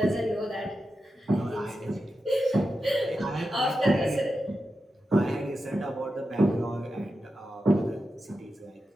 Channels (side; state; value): both; normal; correlation 0.90